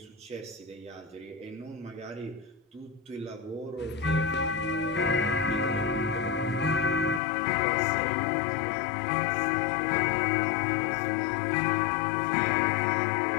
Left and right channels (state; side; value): drops out; right; at 7.2 s